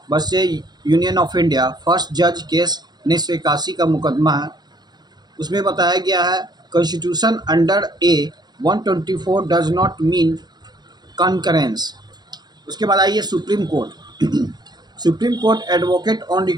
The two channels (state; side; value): late; left; 0.20 ms